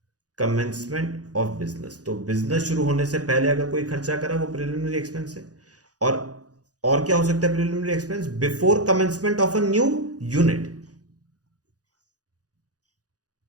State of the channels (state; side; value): late; left; 0.68 ms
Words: commencement of business. तो बिजनेस शुरू होने से पहले अगर कोई खर्चा करा वो प्रिलिमिनरी एक्सपेंस है। और क्या हो सकता है preliminary expense, before commencement of a new unit